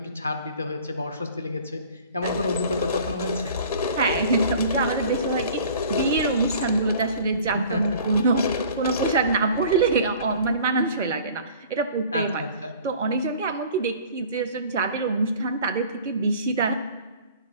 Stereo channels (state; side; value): inverted; both; correlation -0.47